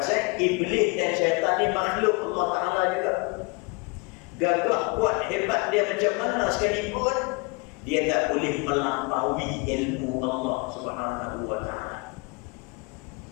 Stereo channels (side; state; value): right; quieter; 30.1 dB